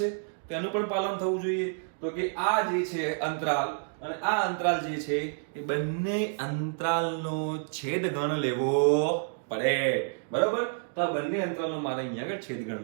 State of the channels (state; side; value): silent; left; digital silence